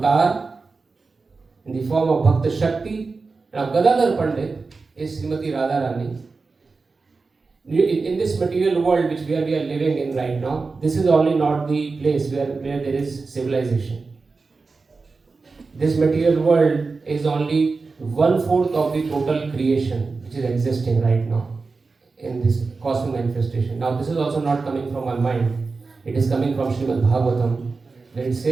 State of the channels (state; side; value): quieter; left; 4.2 dB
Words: in the form of Bhakta Shakti. Now Gadadhar Pandit is Srimati Radharani. In this material world which we are living in right now, this is only not the place where there is civilization. This material world is only 1/4 of the total creation which is existing right now in this cosmic manifestation. Now this is also not coming from my mind. It is coming from Srimad Bhagavatam, where it